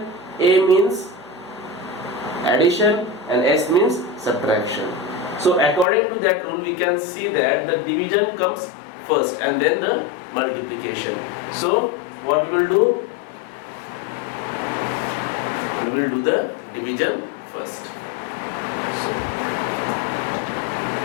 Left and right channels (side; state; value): right; drops out; at 5.9 s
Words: A means addition and S means subtraction. So according to that rule we can see that the division comes first and then the multiplication. So what we will do? We will do the division first.